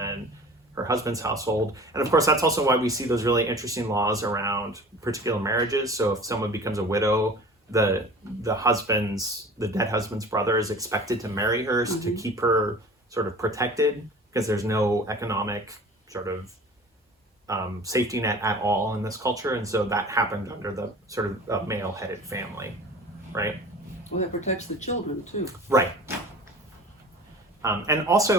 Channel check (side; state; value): both; normal; correlation 0.41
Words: her husband's household. And of course, that's also why we see those really interesting laws around particular marriages. So if someone becomes a widow, the dead husband's brother is expected to marry her to keep her sort of protected, because there's no economic sort of safety net at all in this culture. And so that happened under the sort of male-headed family, right? Well, that protects the children too. Right. And